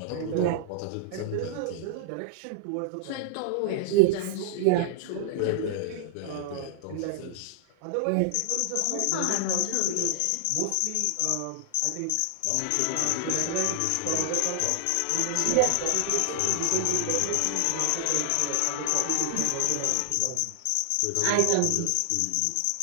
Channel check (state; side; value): different; both; correlation -0.01